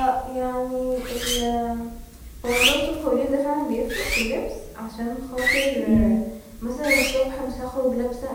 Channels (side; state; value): both; identical; correlation 1.00